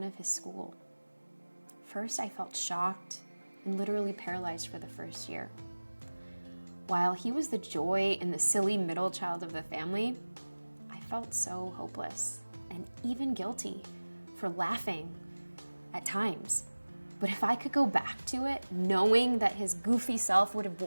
of his school. First, I felt shocked and literally paralyzed for the first year. While he was the joy and the silly middle child of the family, I felt so hopeless and even guilty for laughing at times. But if I could go back to it, knowing that his goofy self would have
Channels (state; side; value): inverted; both; correlation -1.00